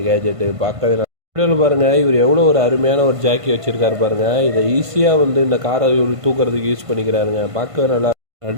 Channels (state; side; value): late; left; 1.5 ms